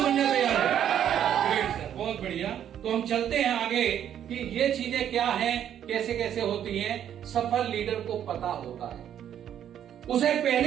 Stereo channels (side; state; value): left; quieter; 9.9 dB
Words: बनने तैयार है? ग्रेट सर, बहुत बढ़िया। तो हम चलते हैं आगे कि ये चीजें क्या हैं, कैसे कैसे होती हैं। सफल लीडर को पता होता है, उसे